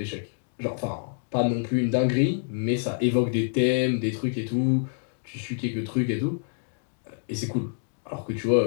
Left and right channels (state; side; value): silent; right; digital silence